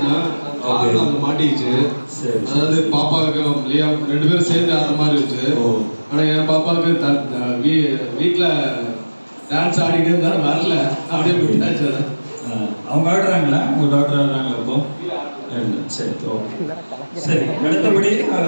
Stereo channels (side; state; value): both; inverted; correlation -1.00